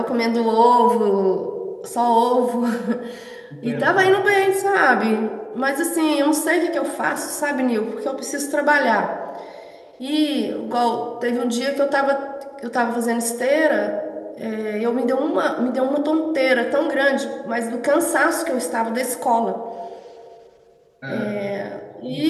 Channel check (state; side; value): identical; both; correlation 1.00